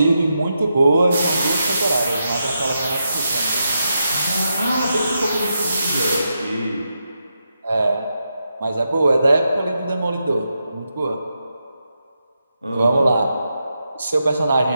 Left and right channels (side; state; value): both; inverted; correlation -0.85